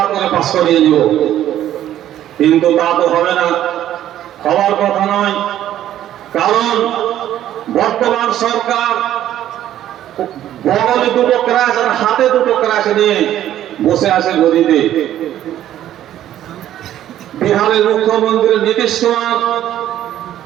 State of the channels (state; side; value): quieter; left; 12.0 dB